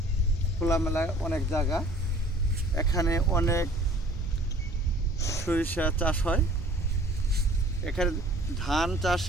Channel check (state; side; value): noise; right; rumble, 13 dB below the sound